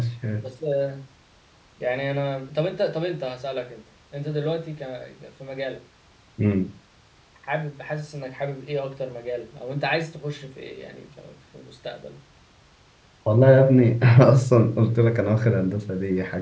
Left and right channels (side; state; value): both; identical; correlation 1.00